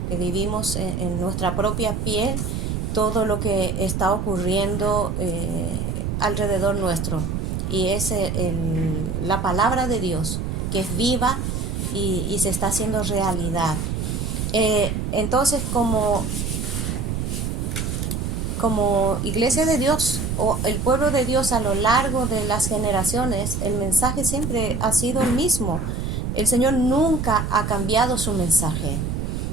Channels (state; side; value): noise; right; rumble, 2 dB below the sound